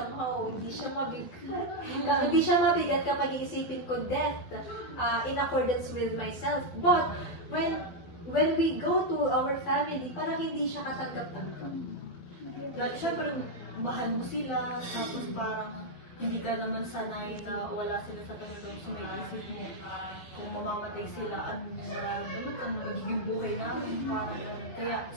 hindi siya mabigat. Hindi siya mabigat kapag iisipin ko death in accordance with myself. But when we go to our family, parang hindi siya katanggap-tanggap. Siyempre, mahal mo sila, tapos parang hindi ka naman sanay na wala sila sa Panginoon. So may isip mo, kung mamamatay sila, ano nararamdaman ka, magiging buhay namin. Kaya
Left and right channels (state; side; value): late; right; 12 ms